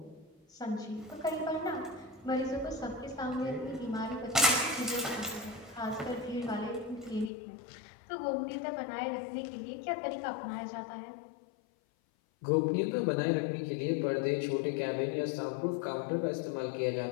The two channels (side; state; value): right; drops out; at 7.3 s